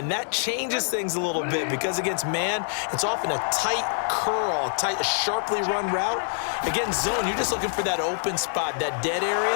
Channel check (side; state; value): right; silent; digital silence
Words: that changes things a little bit because against man, it's often a tight curl, a sharply run route. Against zone, you're just looking for that open spot, that dead